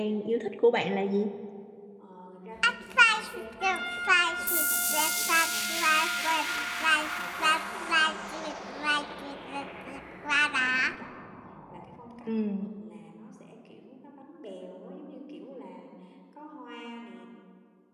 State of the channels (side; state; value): both; identical; correlation 1.00